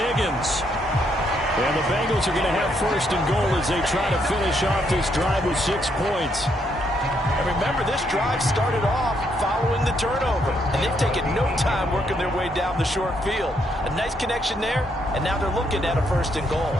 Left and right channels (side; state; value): both; normal; correlation 0.74